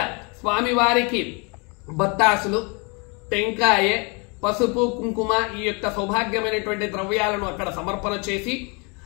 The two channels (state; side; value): quieter; right; 32.1 dB